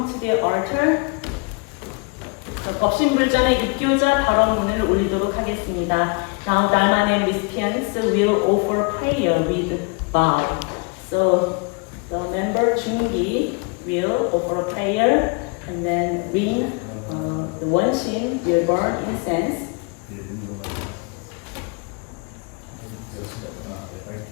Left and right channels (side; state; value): right; quieter; 32.8 dB